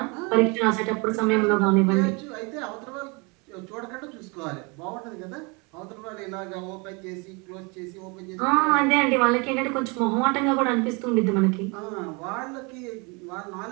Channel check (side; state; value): left; quieter; 29.9 dB